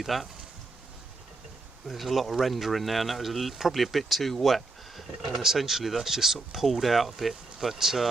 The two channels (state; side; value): quieter; left; 3.3 dB